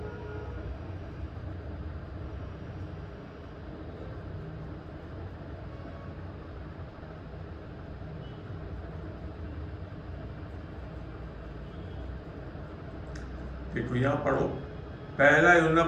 देखो, यहां पढ़ो, पहला यूहन्ना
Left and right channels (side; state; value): both; identical; correlation 1.00